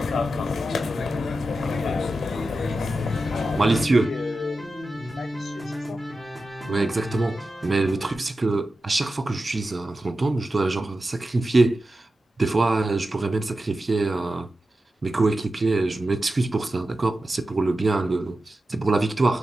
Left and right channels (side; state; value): both; normal; correlation 0.92